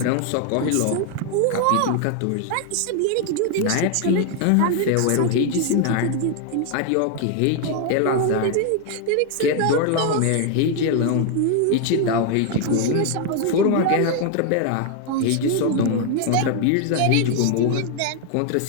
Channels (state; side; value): different; both; correlation 0.00